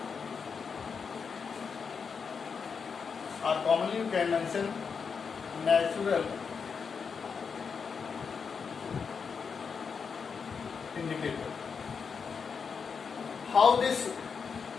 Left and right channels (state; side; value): quieter; right; 5.9 dB